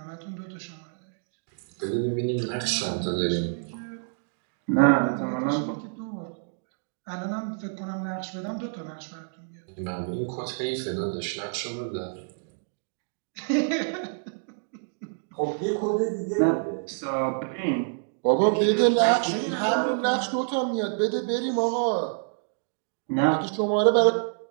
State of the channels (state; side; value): silent; left; digital silence